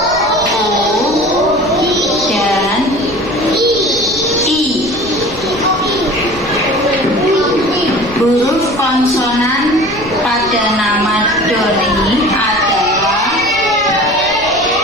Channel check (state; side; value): noise; left; rumble, 17 dB below the sound